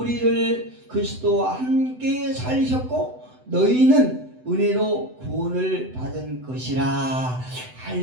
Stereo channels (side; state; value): left; late; 7.9 ms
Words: 그리스도와 함께 살리셨고 너희는 은혜로 구원을 받은 것이라.